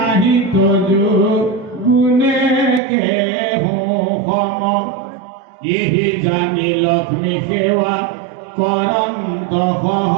তজু গুণে কেহোম ইহি জানি লক্ষ্মী সেৱা কৰন্ত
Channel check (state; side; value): drops out; left; at 2.8 s